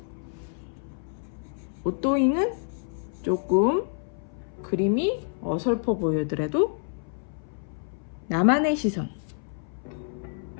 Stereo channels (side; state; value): right; silent; 59 dB below the other